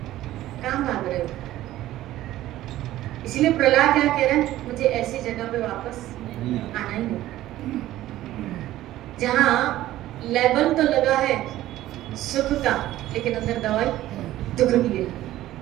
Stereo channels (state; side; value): quieter; left; 14.7 dB